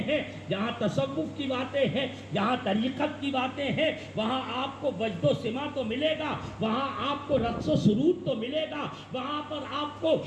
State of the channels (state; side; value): identical; both; correlation 1.00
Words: ہیں، جہاں تصوف کی باتیں ہیں، جہاں طریقت کی باتیں ہیں، وہاں آپ کو وجد و سما تو ملے گا، وہاں آپ کو رقص و سرود تو ملے گا، وہاں پر آپ کو